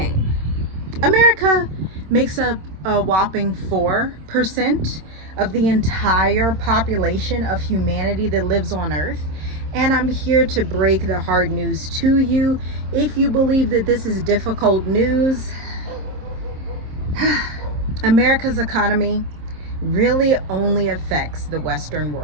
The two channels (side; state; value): left; late; 26 ms